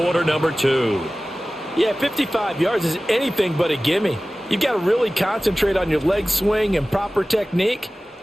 number 2. Yeah, 55 yards is anything but a gimme. You've got to really concentrate on your leg swing and proper technique.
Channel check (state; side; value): normal; both; correlation 0.97